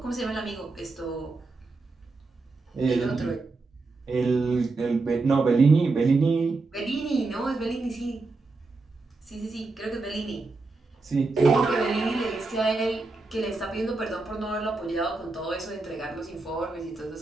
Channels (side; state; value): left; quieter; 3.6 dB